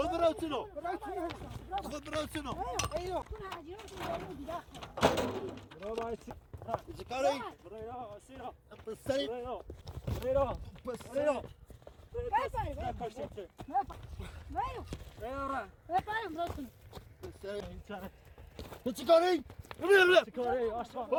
برو سنو خود برو سنو چیکاری پسری پسری تو چی کاری؟ چی کاری؟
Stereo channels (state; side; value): identical; both; correlation 1.00